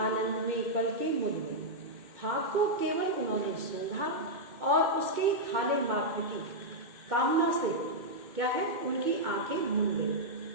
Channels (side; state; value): left; late; 2.2 ms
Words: आनंद में पलके मुड़ गई। फाक को केवल उन्होंने सूंघा और उसके खाने मात्र की कामना से क्या है, उनकी आंखें मुड़ गई।